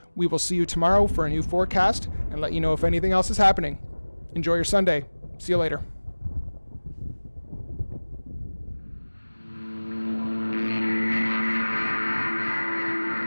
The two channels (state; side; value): inverted; both; correlation -1.00